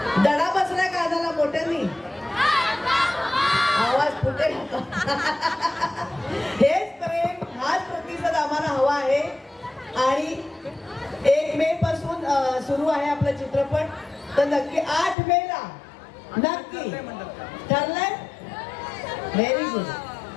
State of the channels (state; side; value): drops out; right; at 15.2 s